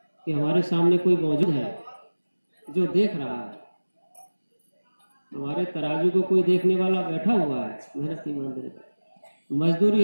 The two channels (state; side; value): inverted; both; correlation -1.00